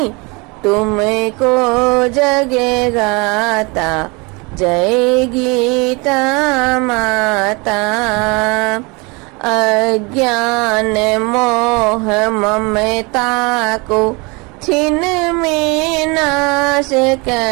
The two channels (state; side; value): quieter; left; 28.1 dB